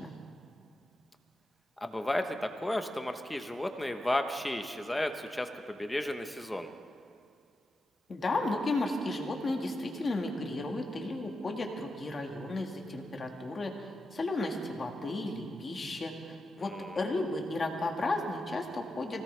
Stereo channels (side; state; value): both; normal; correlation 0.88